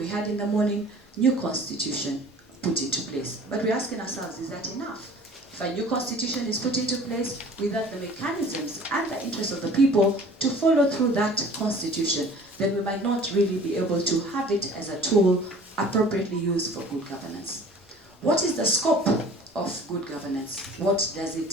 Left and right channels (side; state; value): both; normal; correlation 0.47